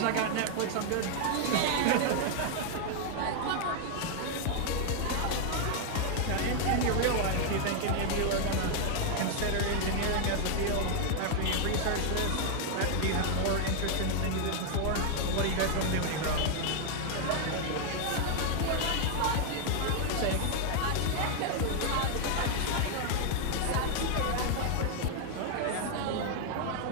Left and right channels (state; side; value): different; both; correlation 0.00